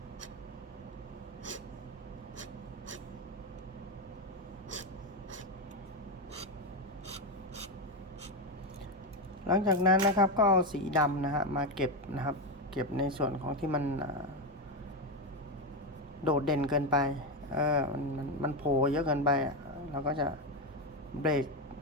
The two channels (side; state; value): both; normal; correlation 0.10